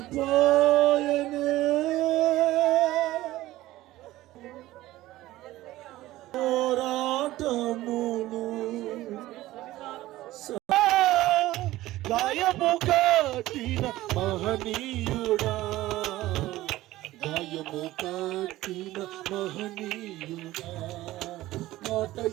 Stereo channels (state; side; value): quieter; left; 16.5 dB